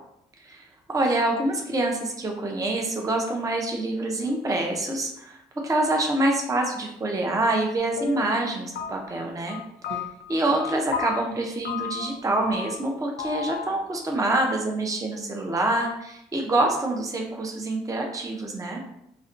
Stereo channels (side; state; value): both; normal; correlation 0.57